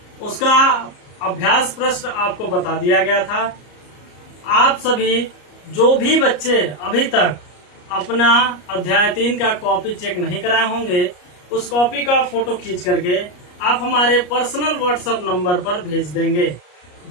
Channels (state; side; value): late; right; 34 ms